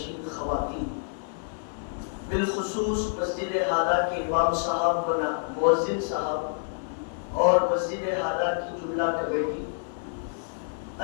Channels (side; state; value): right; silent; digital silence